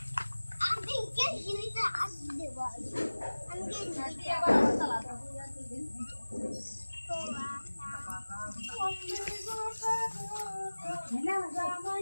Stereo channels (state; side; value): inverted; both; correlation -1.00